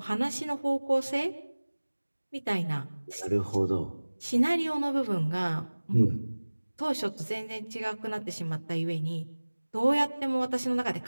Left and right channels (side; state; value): both; inverted; correlation -1.00